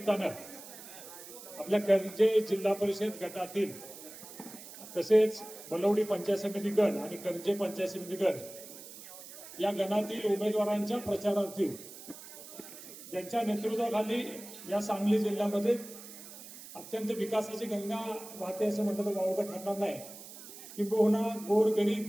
आपल्या कर्जे जिल्हा परिषद गटातील तसेच बलवडी पंचायत समिती गण आणि कर्जे पंचायत समिती गण या गणातील उमेदवारांच्या प्रचारार्थी ज्यांच्या नेतृत्वाखाली या सांगली जिल्ह्यामध्ये अत्यंत विकासाची गंगा वाहते असं म्हटलं तर वावगं ठरणार नाही, किंबहुना गोरगरीब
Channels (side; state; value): right; noise; hiss, 15 dB below the sound